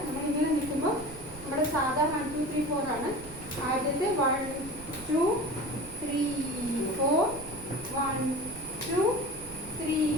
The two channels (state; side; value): noise; right; rumble, 16 dB below the sound